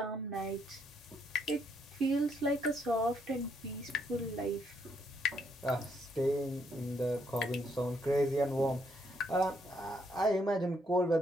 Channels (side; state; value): both; normal; correlation 0.74